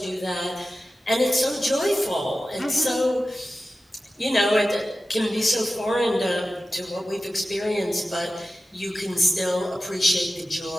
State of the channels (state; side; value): normal; both; correlation 0.94